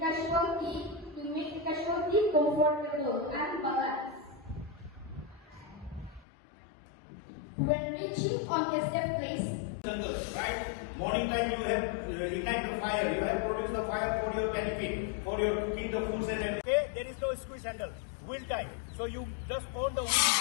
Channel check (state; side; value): drops out; right; at 6.2 s